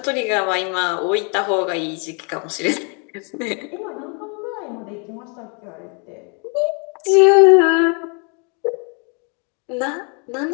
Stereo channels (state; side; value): quieter; right; 35.5 dB